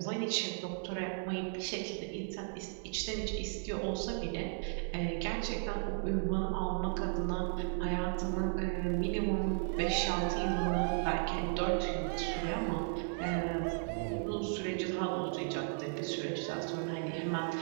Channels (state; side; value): silent; left; 54 dB below the other